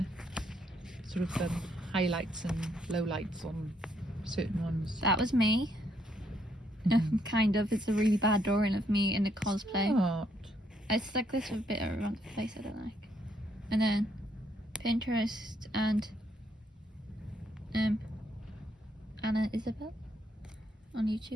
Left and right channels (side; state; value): both; normal; correlation 0.72